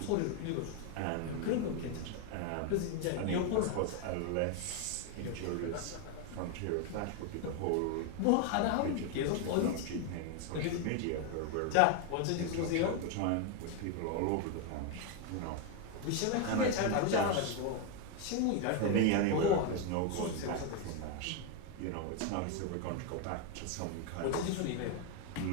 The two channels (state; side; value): different; both; correlation 0.01